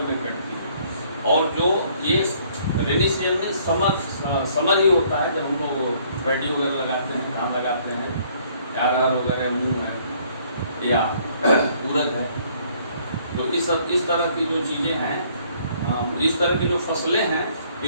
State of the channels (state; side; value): inverted; both; correlation -0.62